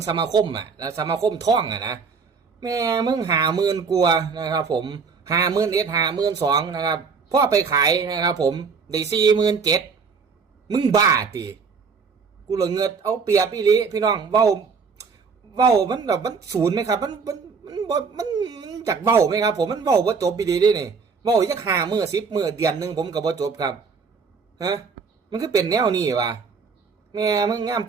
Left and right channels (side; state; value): left; quieter; 5.4 dB